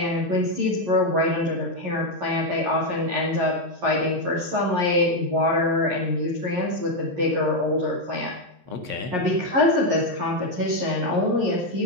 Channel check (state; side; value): late; left; 11 ms